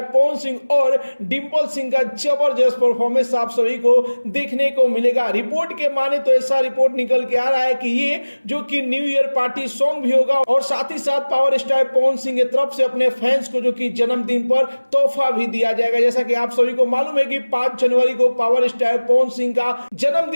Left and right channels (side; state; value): both; inverted; correlation -1.00